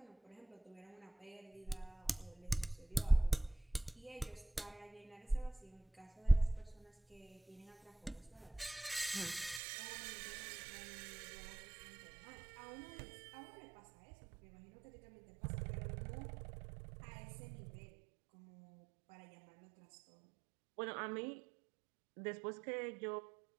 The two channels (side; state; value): left; drops out; at 9.6 s